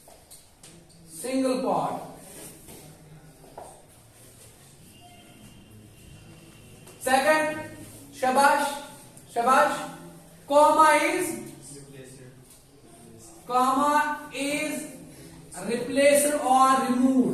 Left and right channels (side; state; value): both; identical; correlation 1.00